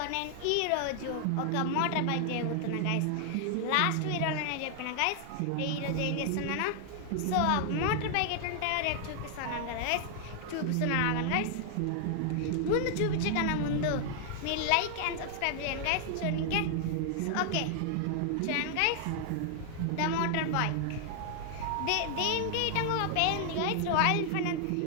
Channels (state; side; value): different; both; correlation 0.00